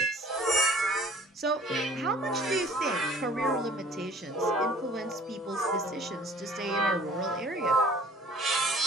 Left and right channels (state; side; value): normal; both; correlation 0.51